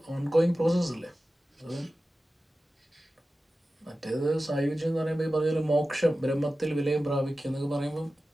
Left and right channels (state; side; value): normal; both; correlation 0.95